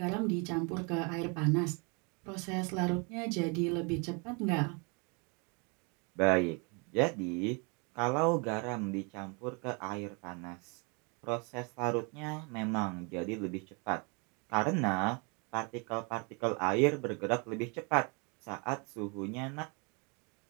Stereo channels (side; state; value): left; quieter; 32.6 dB